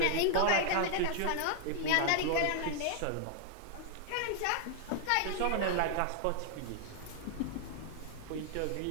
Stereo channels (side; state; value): both; different; correlation -0.01